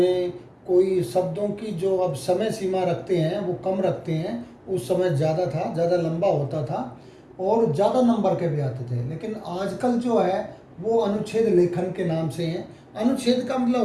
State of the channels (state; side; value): identical; both; correlation 1.00